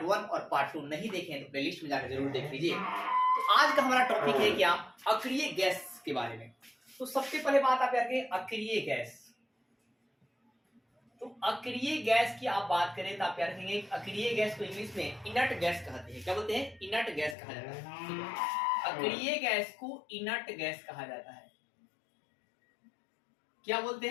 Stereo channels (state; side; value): drops out; right; at 17.4 s